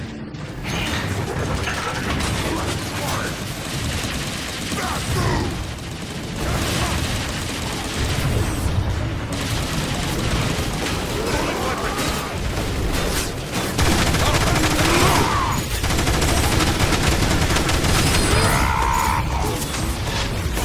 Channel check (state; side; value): identical; both; correlation 1.00